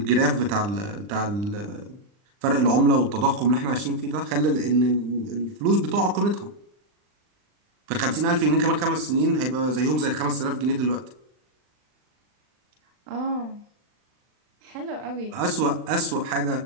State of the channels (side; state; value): left; late; 39 ms